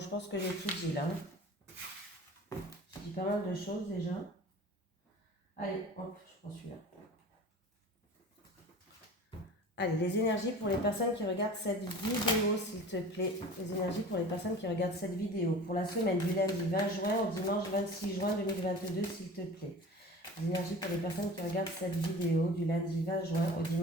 pense que j'ai tout dit là. J'ai dit pas mal de choses déjà. Allez, hop, je prends celui-là. Allez, les énergies pour les personnes qui regardent cette vidéo, s'il te plaît. Les énergies pour les personnes qui regardent cette vidéo. Pour la semaine du lundi 20 juin au dimanche 26 juin 2022, s'il te plaît. Les énergies pour les personnes qui regardent cette vidéo du lundi 20 juin au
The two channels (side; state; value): both; normal; correlation 0.39